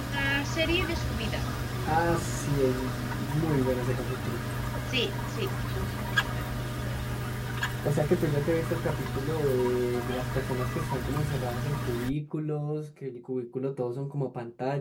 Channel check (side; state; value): both; identical; correlation 1.00